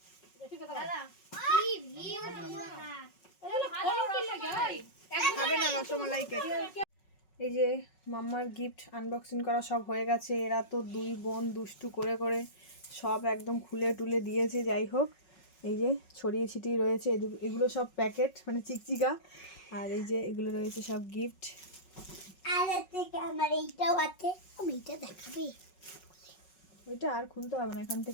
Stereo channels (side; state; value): right; late; 5.4 ms